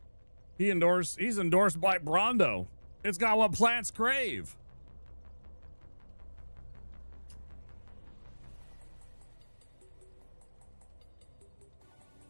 He's endorsed by Brondo. It's got what plants crave.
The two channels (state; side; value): inverted; both; correlation -1.00